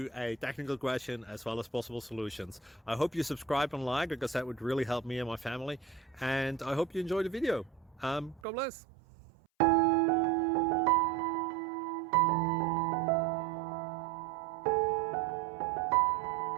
a technical question as well as possible solutions. I hope you subscribe and like, because that would really help me and my family. And I hope you enjoy the video. God bless.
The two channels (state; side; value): drops out; left; at 8.4 s